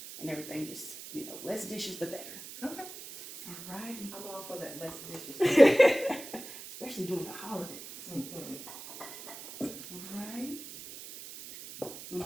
and everything, just, less dishes the better. Okay. Alrighty. I'm all for that less dishes. Especially during the holidays. Alright. Now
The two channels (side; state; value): right; noise; hiss, 12 dB below the sound